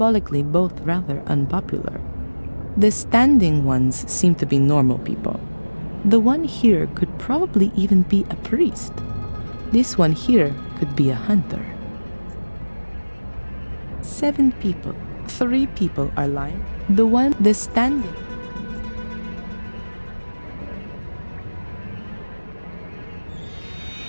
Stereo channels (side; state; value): both; inverted; correlation -1.00